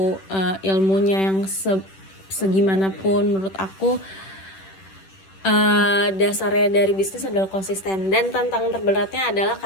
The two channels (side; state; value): right; late; 10 ms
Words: ilmunya yang segimanapun. Menurut aku dasarnya dari bisnis adalah konsisten, dan tantangan terberatnya adalah